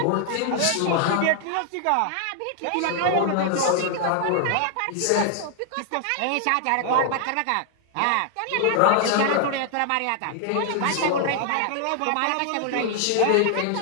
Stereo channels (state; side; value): different; both; correlation 0.00